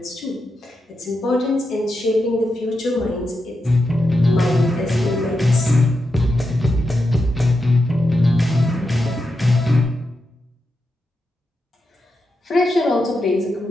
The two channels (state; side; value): normal; both; correlation 0.87